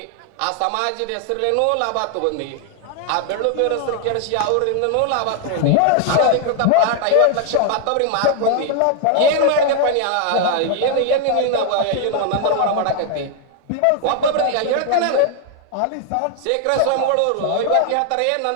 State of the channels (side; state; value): both; different; correlation 0.00